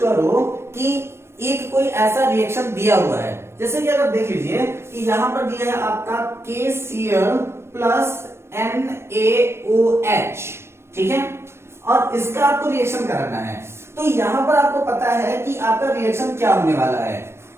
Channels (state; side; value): late; left; 0.12 ms